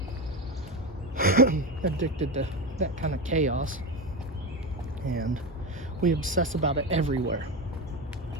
addicted to that kind of chaos, and we obsess about it everywhere.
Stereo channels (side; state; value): both; normal; correlation 0.18